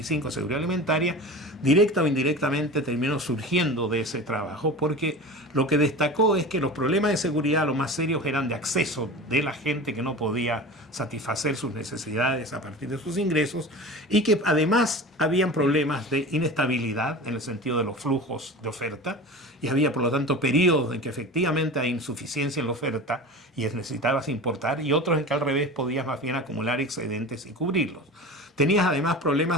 seguridad alimentaria, directa o indirectamente terminó surgiendo de ese trabajo, porque lo que destacó es que los problemas de seguridad, los más serios, eran de acceso de la gente que no podía satisfacer sus necesidades a partir de sus ingresos, y que además habían problemas de inestabilidad en el sentido de los flujos de oferta, y había por lo tanto periodos en que efectivamente hay insuficiencia en la oferta y necesitabas importar, y otros en que al revés podías más bien acumular excedentes y cubrirlos. Tenías además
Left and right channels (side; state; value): both; normal; correlation 0.34